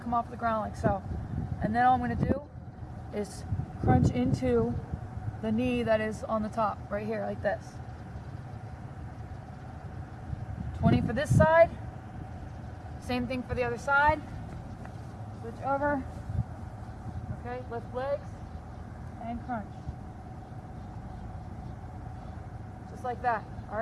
come off the ground like so. And then all I'm going to do is crunch into the knee that is on the top, right here, like this. 20 for this side. Same thing for the other side. Switch over. Okay, lift legs and crunch. Just like that, all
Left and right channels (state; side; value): identical; both; correlation 1.00